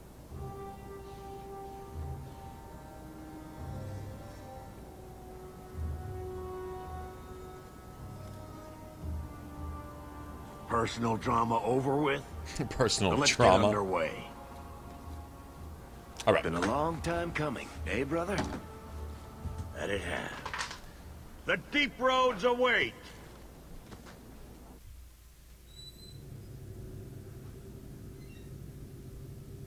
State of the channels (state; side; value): identical; both; correlation 1.00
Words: Personal drama over with? Personal Let's trauma. get underway. All right. Been a long time coming, eh, brother? That it has. The deep roads await.